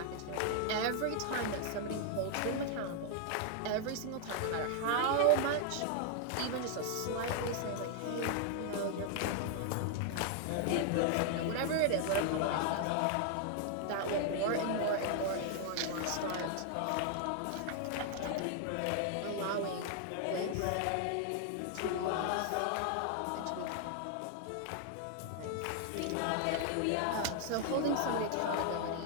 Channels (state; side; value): different; both; correlation 0.00